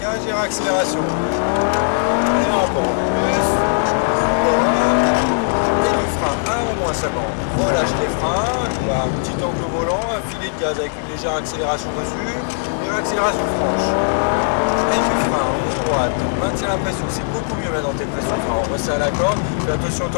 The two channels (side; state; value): right; silent; digital silence